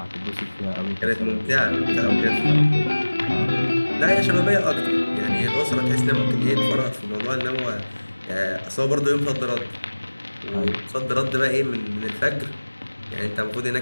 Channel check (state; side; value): inverted; both; correlation -1.00